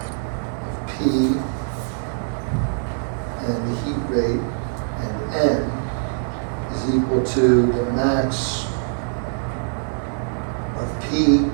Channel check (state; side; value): silent; left; 63 dB below the other